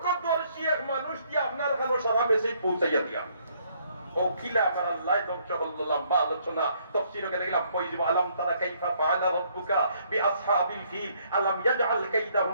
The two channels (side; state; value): both; inverted; correlation -0.67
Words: এক মানুষ দিয়ে আপনার কাছে সারা মেসেজ পৌঁছাইয়া দিয়া ও কিলা আমার আল্লাহ ধ্বংস করলো লম্বা আলোচনা তাফসীরে গেলাম কইব আলাম তারা কাইফা ফাআলা রাব্বুকা বিআসহাবিল ফিল আলাম ইয়াজআল